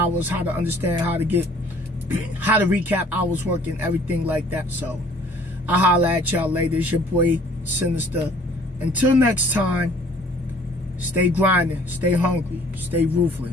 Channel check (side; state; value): both; normal; correlation 0.56